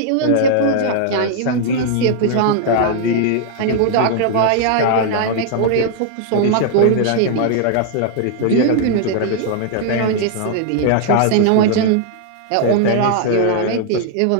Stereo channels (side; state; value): both; different; correlation 0.00